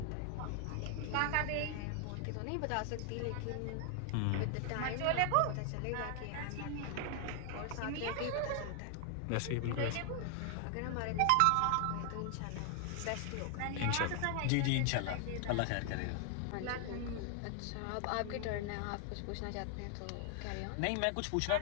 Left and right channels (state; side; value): different; both; correlation 0.00